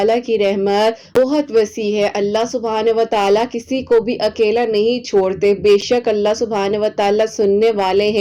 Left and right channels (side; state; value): both; identical; correlation 1.00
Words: की रहमत बहुत वसी है। अल्लाह सुब्हानहू व तआला किसी को भी अकेला नहीं छोड़ते। बेशक अल्लाह सुब्हानहू व तआला सुनने वाले